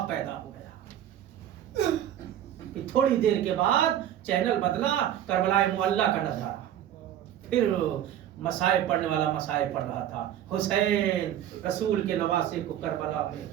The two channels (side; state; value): left; quieter; 11.1 dB